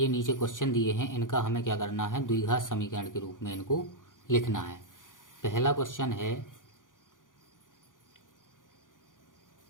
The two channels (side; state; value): right; late; 0.88 ms